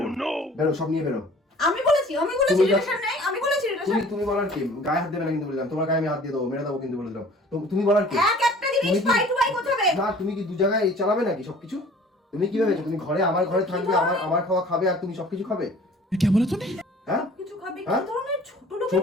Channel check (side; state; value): both; normal; correlation 0.49